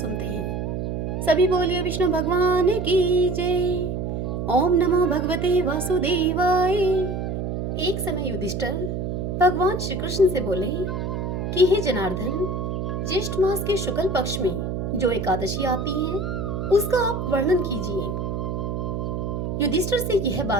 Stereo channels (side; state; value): right; noise; hum, 3 dB below the sound